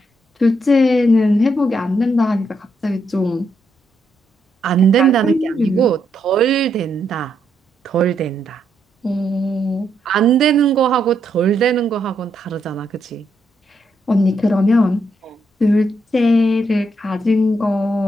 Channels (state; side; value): normal; both; correlation 0.78